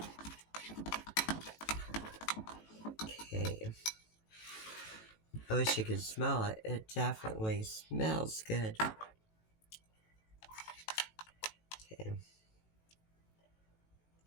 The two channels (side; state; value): right; late; 18 ms